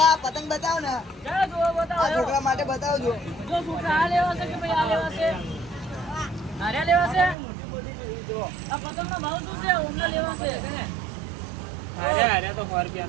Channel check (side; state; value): left; drops out; at 7.4 s